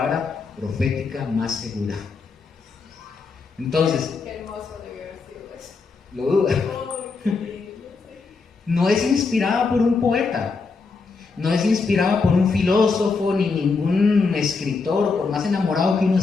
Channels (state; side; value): quieter; right; 4.5 dB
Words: profética más segura. Entonces, qué hermoso debió haber sido eso. ¿lo duda? No es inspirada por un poeta, no es inspirada por un filósofo ni ningún escritor, por más enamorado que uno